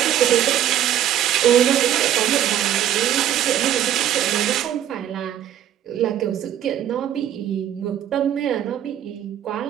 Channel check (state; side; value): quieter; left; 11.1 dB